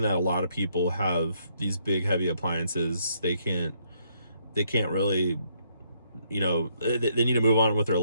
that a lot of people have these big heavy appliances. They can't really, you know, they need to move on with their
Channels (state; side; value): inverted; both; correlation -0.72